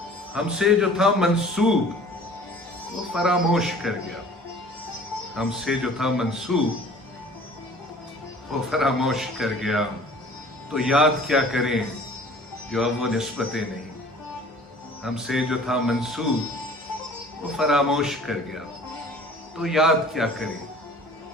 हमसे जो था मंसूब वो फरामोश कर गया, हमसे जो था मंसूब वो फरामोश कर गया। तो याद क्या करें जो अब वो निस्बतें नहीं। हमसे जो था मंसूब वो फरामोश कर गया, तो याद क्या करें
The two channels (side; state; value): both; normal; correlation 0.48